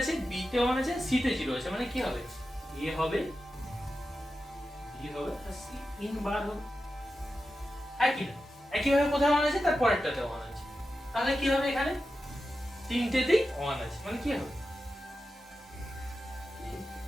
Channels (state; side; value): normal; both; correlation 0.91